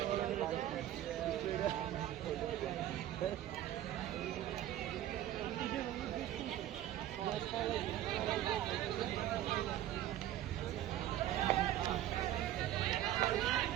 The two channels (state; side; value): quieter; left; 12.7 dB